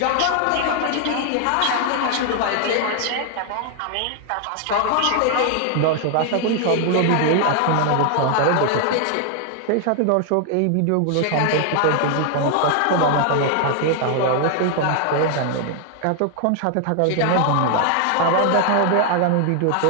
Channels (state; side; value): different; both; correlation 0.00